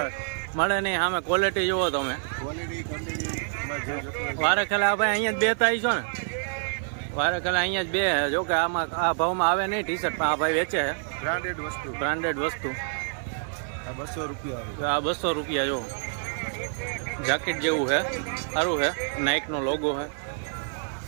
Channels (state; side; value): silent; left; digital silence